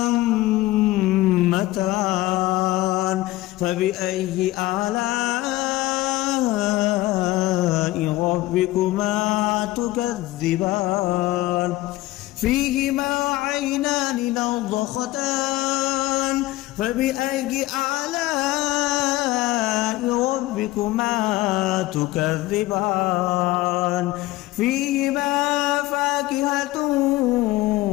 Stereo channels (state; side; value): quieter; right; 18.0 dB